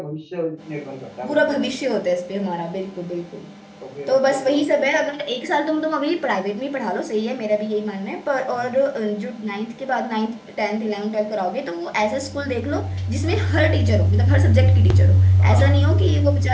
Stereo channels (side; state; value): both; identical; correlation 1.00